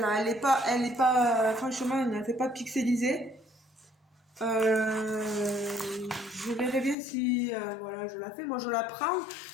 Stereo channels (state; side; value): drops out; right; at 7.0 s